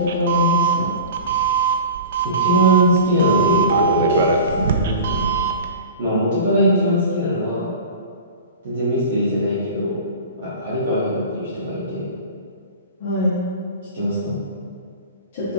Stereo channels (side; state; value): both; inverted; correlation -0.36